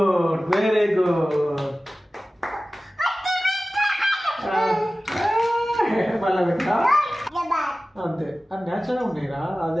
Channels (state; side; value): normal; both; correlation 0.96